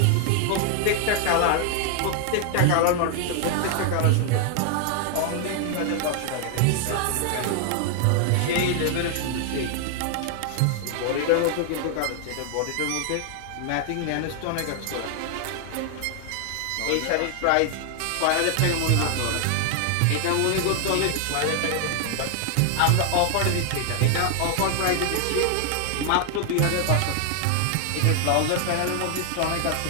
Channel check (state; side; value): different; both; correlation 0.00